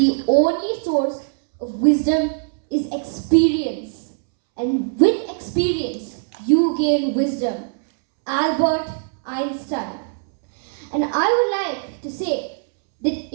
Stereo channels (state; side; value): silent; left; 65 dB below the other